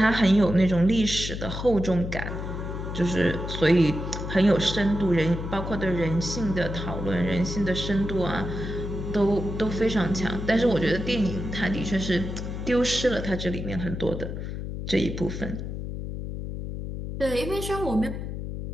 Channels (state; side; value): noise; left; hum, 6 dB below the sound